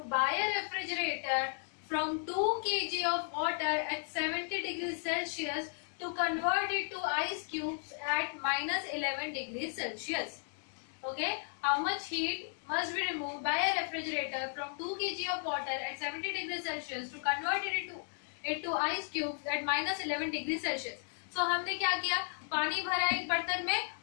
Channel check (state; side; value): silent; right; 55 dB below the other